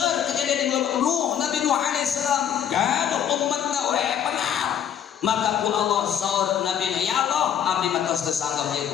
kejadian di bulan Nuh, Nabi Nuh alaihissalam gaduh umatna we pengal. Maka ku Allah saur Nabi na, ya Allah abdi mah tos teu sanggap ieu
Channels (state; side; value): quieter; right; 9.4 dB